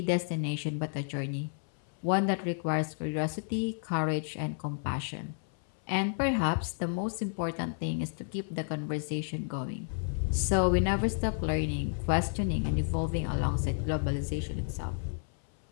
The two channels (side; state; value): right; silent; 57 dB below the other